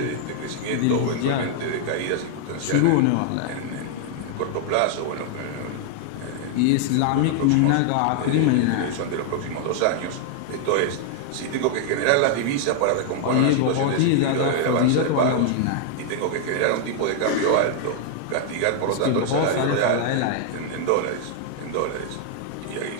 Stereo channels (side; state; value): both; different; correlation 0.00